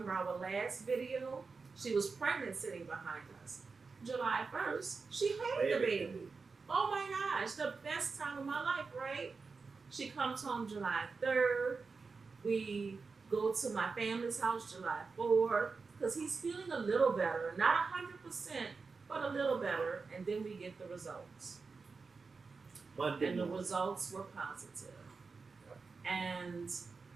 our last video, she was pregnant sitting behind us. July 1st, she had the baby. Oh my gosh, the best time of my life, right? She comes home July 3rd. We go to my family's house July 4th because he's feeling a little better. Not 100%, but a little better. And then we get the results. Monday And the morning. results were positive. And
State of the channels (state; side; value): quieter; left; 4.6 dB